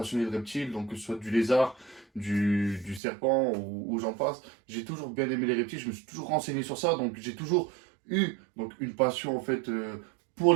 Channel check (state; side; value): drops out; left; at 3.0 s